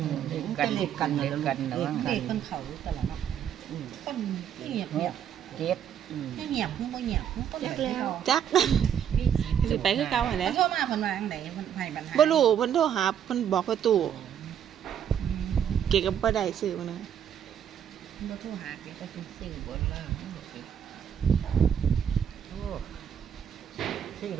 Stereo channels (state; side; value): quieter; left; 9.0 dB